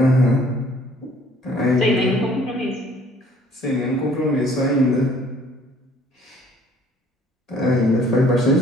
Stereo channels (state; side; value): normal; both; correlation 0.57